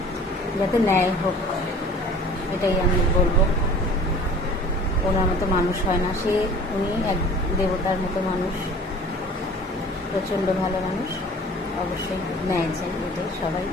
যাতে ন্যায় হোক, এটাই আমি বলবো। ওনার মতো মানুষ হয় না, উনি এক দেবতার মতো মানুষ, প্রচণ্ড ভালো মানুষ। অবশ্যই ন্যায় চাই,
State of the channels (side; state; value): both; normal; correlation 0.46